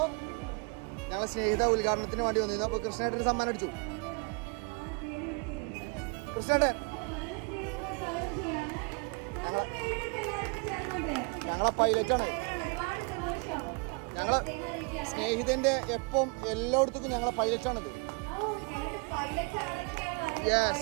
ഞങ്ങളെ സ്നേഹിത ഉദ്ഘാടനത്തിന് വേണ്ടി വന്നിരുന്നു. അപ്പോൾ കൃഷ്ണേട്ടന് സമ്മാനം അടിച്ചു. കൃഷ്ണേട്ടൻ ഞങ്ങളെ പൈലറ്റാണ്. ഞങ്ങളെ സ്നേഹിതന്റെ എപ്പം എല്ലായിടത്തും ഞങ്ങളെ പൈലറ്റാണിത്.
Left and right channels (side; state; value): left; quieter; 33.4 dB